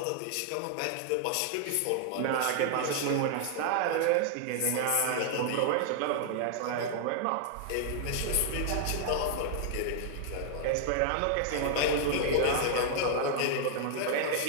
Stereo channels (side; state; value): both; different; correlation -0.01